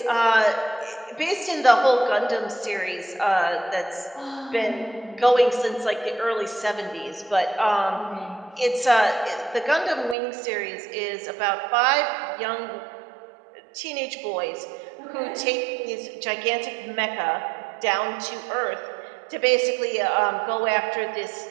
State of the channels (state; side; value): drops out; left; at 10.2 s